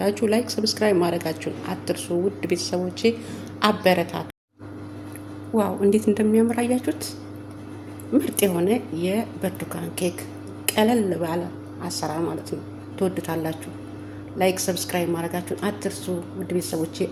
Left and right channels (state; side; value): identical; both; correlation 1.00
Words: ላይክ፣ ሰብስክራይብ ማድረጋችሁን አትርሱ። ውድ ቤተሰቦቼ አበረታቱ። ዋው እንዴት እንደሚያምር አያችሁት? ምርጥ የሆነ የብርቱካን ኬክ ቀለል ባለ አሰራር ማለት ነው። ትወዱታላችሁ። ላይክ ሰብስክራይብ ማድረጋችሁን አትርሱ። ውድ ቤተሰቦቼ